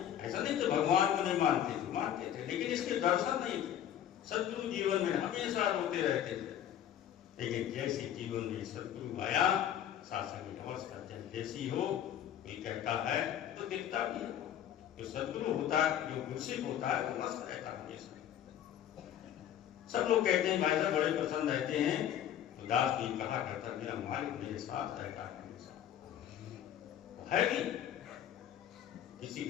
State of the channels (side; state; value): right; quieter; 10.4 dB